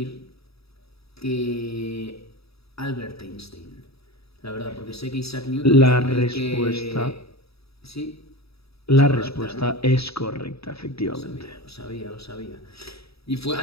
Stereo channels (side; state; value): right; late; 0.77 ms